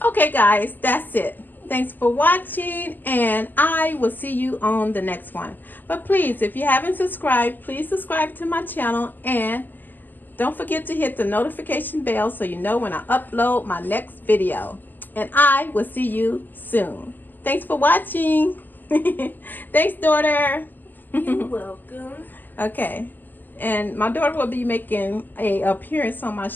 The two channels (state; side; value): late; right; 0.089 ms